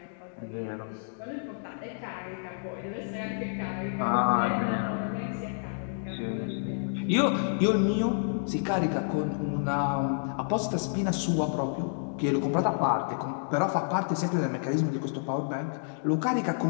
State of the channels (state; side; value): silent; right; digital silence